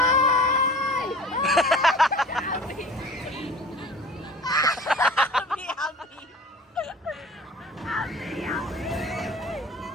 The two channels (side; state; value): both; normal; correlation 0.42